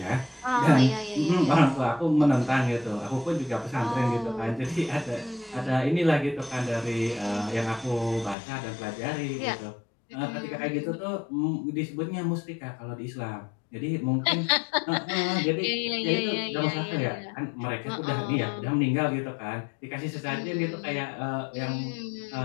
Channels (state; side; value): drops out; right; at 8.3 s